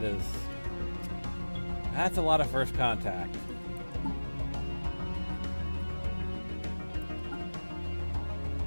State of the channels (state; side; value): inverted; both; correlation -1.00